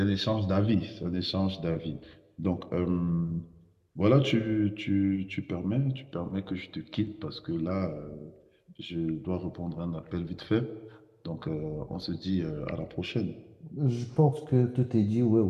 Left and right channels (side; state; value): both; identical; correlation 1.00